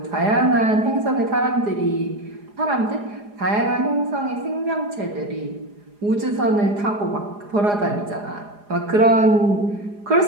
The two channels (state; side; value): late; left; 4.9 ms